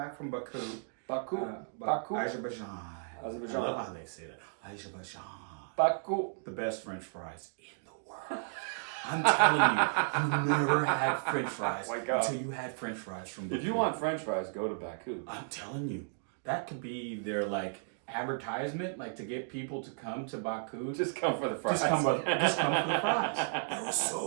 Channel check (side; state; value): left; silent; digital silence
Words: from Baku. Baku. Azerbaijan. I love how they say that. Azerbaijan. Baku. The best French fries in the world. I'm telling you, you never had French fries until you had French fries from Baku. If you want French fries, go to Baku. I'm telling you, that could be their like advertisement, like to get people to come to Baku. Just come for the fries. Just come for the fries. They were